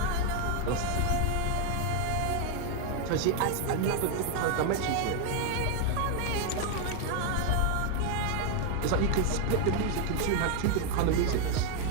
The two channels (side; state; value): both; different; correlation 0.00